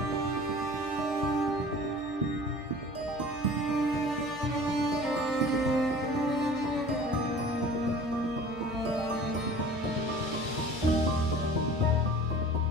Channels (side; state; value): left; noise; hum, 22 dB below the sound